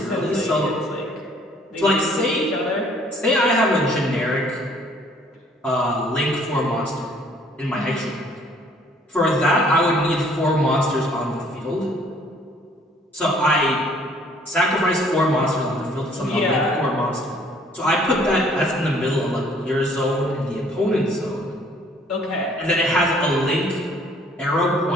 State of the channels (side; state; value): both; normal; correlation 0.59